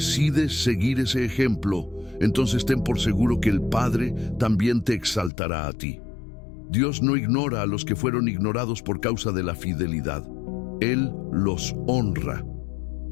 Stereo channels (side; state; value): right; drops out; at 5.3 s